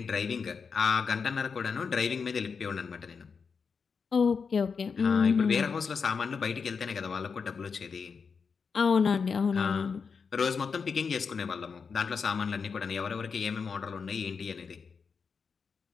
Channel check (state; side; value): quieter; right; 5.6 dB